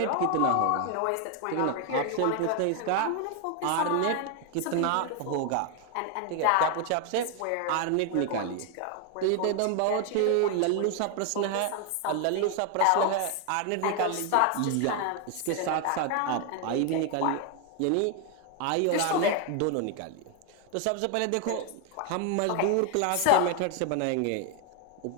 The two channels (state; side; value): different; both; correlation 0.00